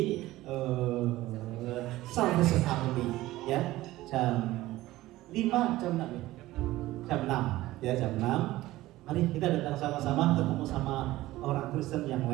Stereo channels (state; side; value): quieter; left; 16.8 dB